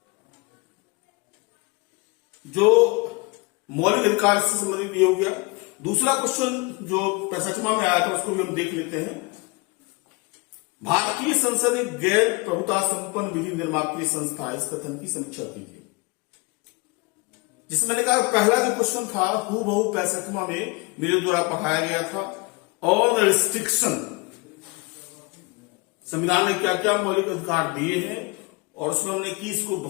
जो मौलिक अधिकार से संबंधित ये हो गया। दूसरा क्वेश्चन जो 65वां में आया था उसको भी हम देख लेते हैं। भारतीय संसद एक गैर प्रभुता संपन्न विधि निर्मात्री संस्था है, इस कथन की समीक्षा कीजिए। जिसमें मैंने कहा पहला जो क्वेश्चन था हूबहू 65वां में मेरे द्वारा पढ़ाया गया था। ऑल रिस्ट्रिक्शन, संविधान ने क्या क्या मौलिक अधिकार दिए हैं, और उसमें हमने कीस को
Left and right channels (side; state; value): right; quieter; 27.5 dB